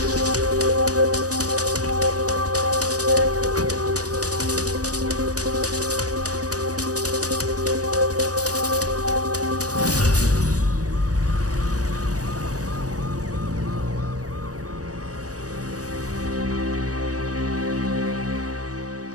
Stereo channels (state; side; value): late; left; 0.66 ms